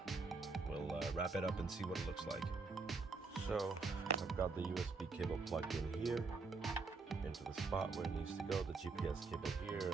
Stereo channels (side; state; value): left; quieter; 4.1 dB